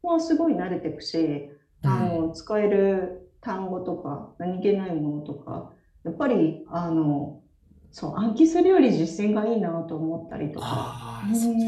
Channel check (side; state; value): both; identical; correlation 1.00